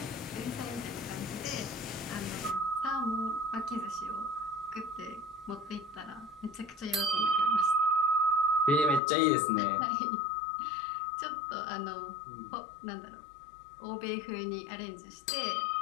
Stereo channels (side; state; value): right; drops out; at 9.0 s